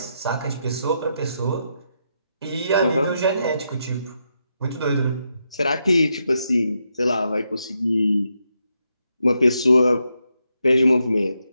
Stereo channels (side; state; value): both; inverted; correlation -0.82